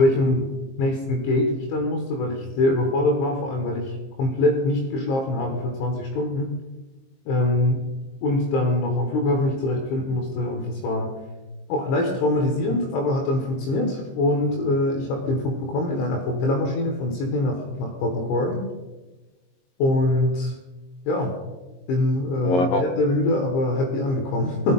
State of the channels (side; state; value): right; late; 22 ms